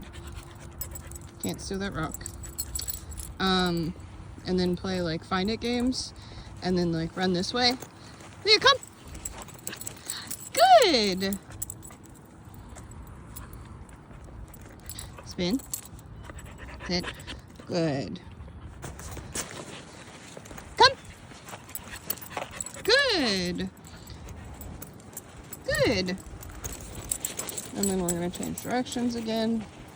Can't steal that rock. And then play like find it games and then like run this way. Leah, come. Good. Spin. Sit. Good. Come. Good. Good. And then we're going to change directions again.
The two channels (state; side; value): identical; both; correlation 1.00